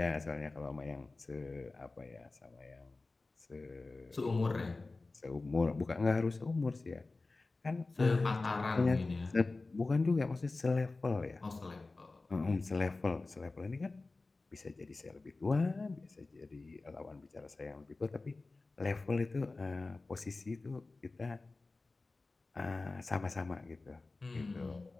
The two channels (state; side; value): quieter; right; 3.5 dB